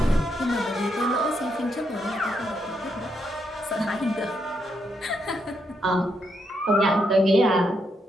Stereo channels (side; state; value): both; normal; correlation 0.79